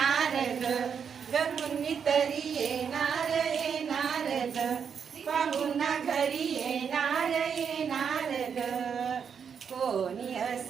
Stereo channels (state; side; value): quieter; left; 7.0 dB